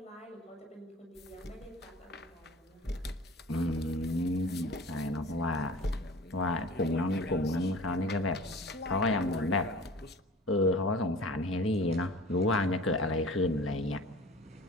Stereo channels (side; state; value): both; normal; correlation 0.41